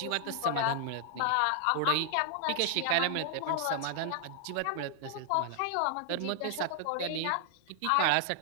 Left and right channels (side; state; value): both; different; correlation 0.00